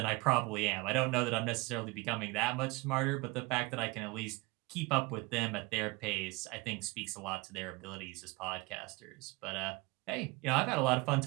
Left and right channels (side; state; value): left; quieter; 24.1 dB